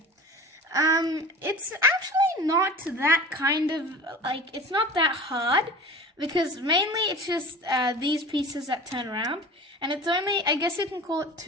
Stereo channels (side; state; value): both; normal; correlation 0.38